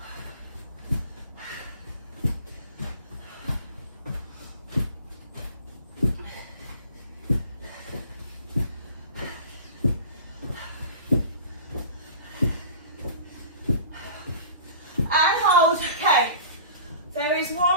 And hold. Okay. There is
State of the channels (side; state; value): both; inverted; correlation -0.41